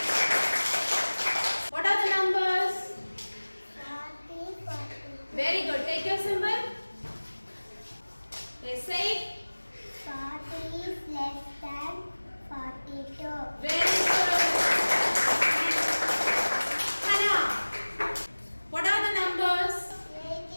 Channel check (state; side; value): inverted; both; correlation -1.00